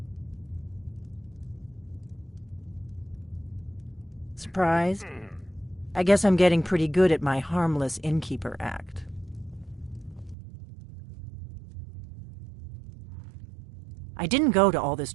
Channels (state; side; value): drops out; left; at 10.4 s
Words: Surprised? I guess I'm getting pretty good at my harmless innkeeper act. I didn't go to all this